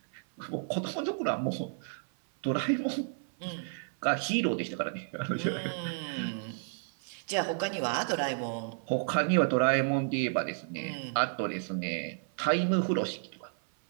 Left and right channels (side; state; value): left; silent; 57 dB below the other